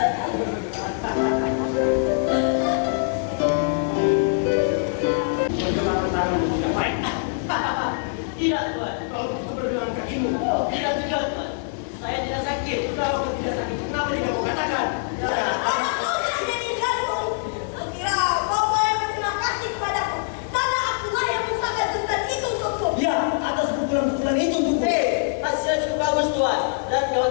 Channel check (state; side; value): silent; right; digital silence